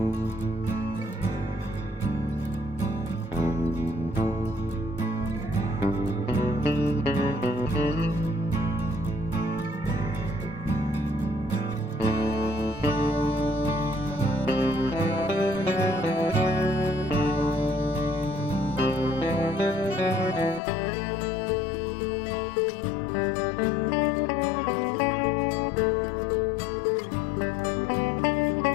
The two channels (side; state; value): right; drops out; at 20.6 s